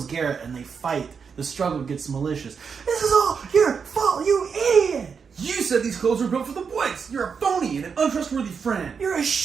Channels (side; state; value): left; quieter; 6.1 dB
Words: Garrett and they fight. The struggle gets malicious. This is all your fault, you idiot! You said these clothes were built for the woods. You're a phony and an untrustworthy friend. You're a